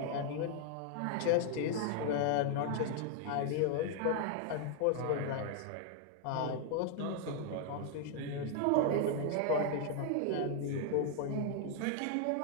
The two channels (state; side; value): different; both; correlation 0.00